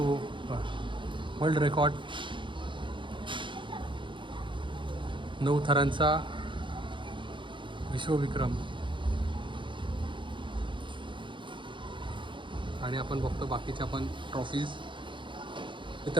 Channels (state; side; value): late; left; 0.24 ms